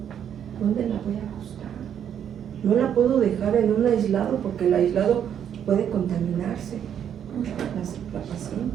¿dónde la voy a acostar? No la puedo dejar en un aislado porque el aislado puede contaminarse la paciente.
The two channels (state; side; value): quieter; left; 9.1 dB